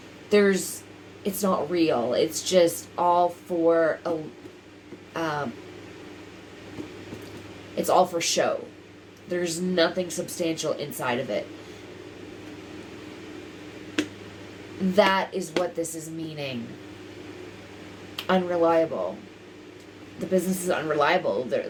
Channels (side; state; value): both; identical; correlation 1.00